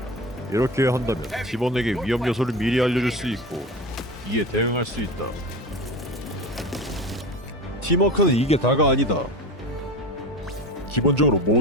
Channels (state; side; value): normal; both; correlation 0.29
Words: 이렇게 한다면 팀원에게 위험 요소를 미리 알려줄 수 있고 이에 대응할 수 있다. 팀워크는 이게 다가 아니다. 기본적으로